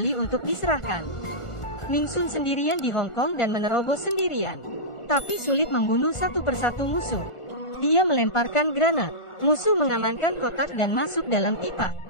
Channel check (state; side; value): late; right; 1.4 ms